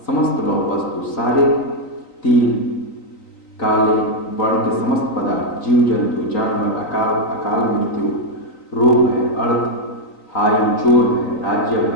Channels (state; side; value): late; right; 3.9 ms